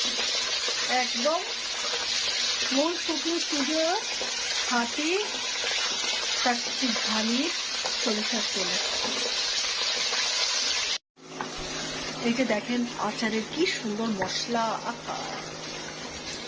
একদম মূল শুকনো স্টুডিও হাতি চাকরি ধানি সরিষার তেলে। এই যে দেখেন আচারের কি সুন্দর মশলা,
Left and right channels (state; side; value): identical; both; correlation 1.00